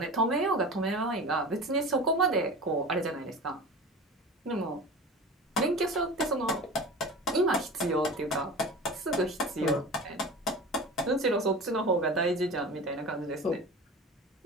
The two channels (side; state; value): both; normal; correlation 0.34